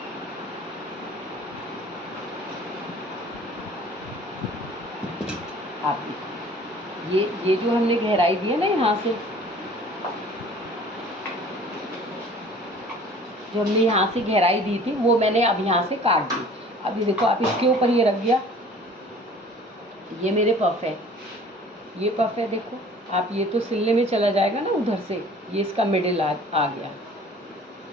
आप देखो, ये जो हमने गहराई दी है ना, यहाँ से जो हमने यहाँ से गहराई दी थी वो मैंने अब यहाँ से काट दी। अभी देखो आप, इसके ऊपर ये रख दिया, ये मेरे पफ है, ये पफ है। देखो आप, ये तो सिलने में चला जाएगा ना उधर से, ये इसका मिडिल आ गया,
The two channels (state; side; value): normal; both; correlation 0.49